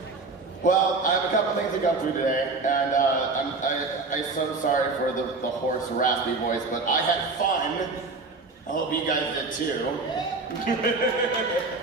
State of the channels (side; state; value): left; quieter; 3.7 dB